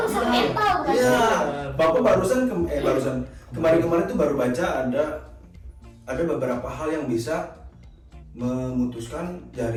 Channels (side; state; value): both; identical; correlation 1.00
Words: mental kan. Iya, Bapak barusan kemarin tuh baru baca ada beberapa hal yang bisa memutuskan